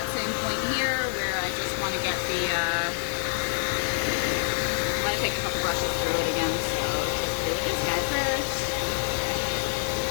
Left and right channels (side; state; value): right; silent; digital silence